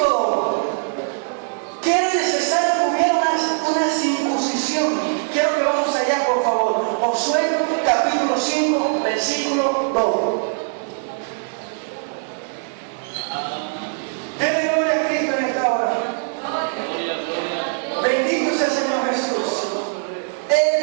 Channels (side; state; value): left; silent; 61 dB below the other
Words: que era necesario que hubiera una circuncisión. Quiero que vamos allá, por favor. Josué capítulo 5, versículo 2. Denle gloria a Cristo en esta hora. Bendito sea el Señor Jesús.